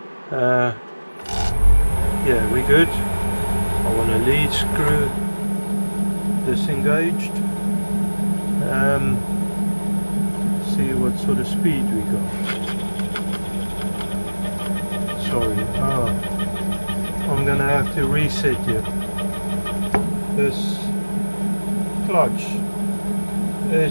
Yeah, we're good. I want a lead screw disengaged. See what sort of speed we got. Sorry, I'm gonna have to reset it. This clutch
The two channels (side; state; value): both; inverted; correlation -1.00